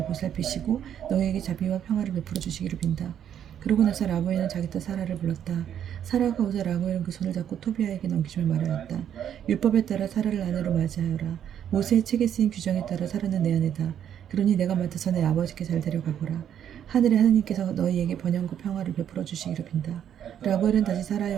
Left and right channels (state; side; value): quieter; left; 9.5 dB